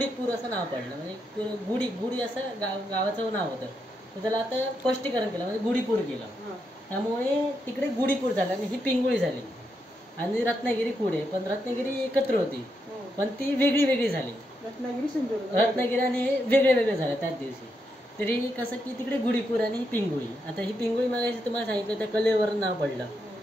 असं नाव पडलं म्हणजे गुढी असं गावाचं नाव होतं. तर त्याला आता स्पष्टीकरण केलं म्हणजे गुढीपूर केलं. त्यामुळे तिकडे गुढीपूर झालं आणि ही पिंगुळी झाली आणि रत्नागिरी पुढे. पण रत्नागिरी एकत्र होती पण ती वेगळी झाली. रत्नागिरी आणि हे वेगळे झाले त्याच दिवशी. तरी कसं की तिकडे गुढीपूर आणि ही पिंगुळी. आता ही पिंगुळी मागायची तुम्हाला सांगितलं त्या कलेवरून नाव पडलं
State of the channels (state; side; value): normal; both; correlation 0.82